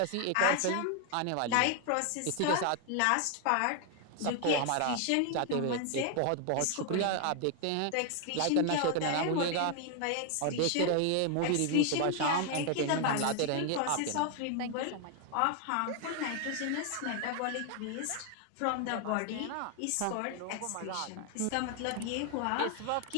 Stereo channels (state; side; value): different; both; correlation 0.00